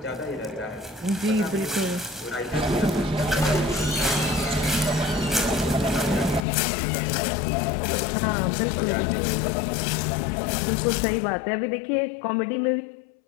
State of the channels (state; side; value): drops out; right; at 6.4 s